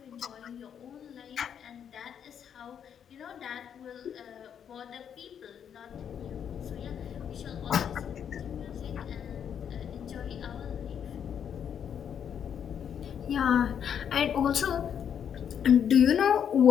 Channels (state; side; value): quieter; right; 8.4 dB